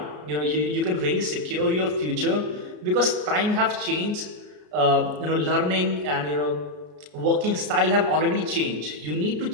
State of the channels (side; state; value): left; late; 33 ms